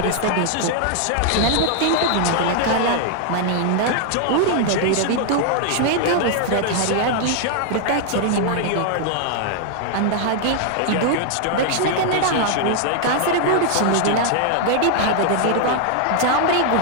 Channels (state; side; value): different; both; correlation 0.00